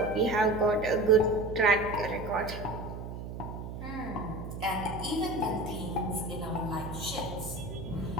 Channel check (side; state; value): right; noise; hum, 8 dB below the sound